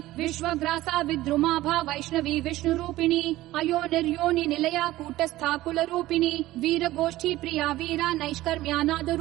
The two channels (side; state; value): left; quieter; 16.4 dB